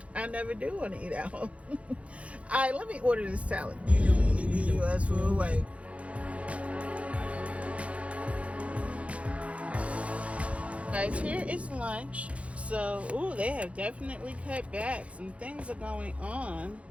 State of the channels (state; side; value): late; left; 0.063 ms